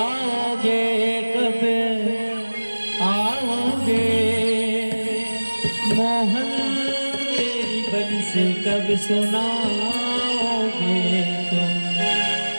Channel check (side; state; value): both; inverted; correlation -1.00